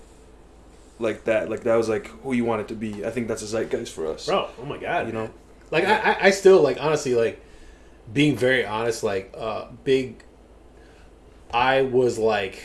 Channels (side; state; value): both; identical; correlation 1.00